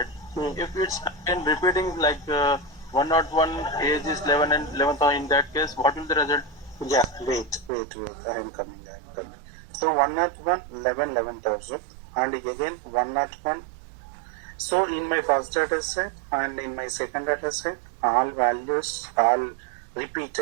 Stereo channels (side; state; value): left; drops out; at 7.7 s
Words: if it's again repeating like 101, age is 11 and 11,000, in that case, what will the result? Yeah, wait. I am coming. So 101, 11,000 and again 101. So in my first data set and in my second data set, all values all